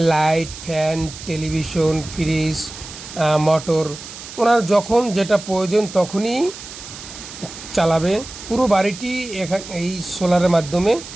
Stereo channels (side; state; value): right; noise; hiss, 13 dB below the sound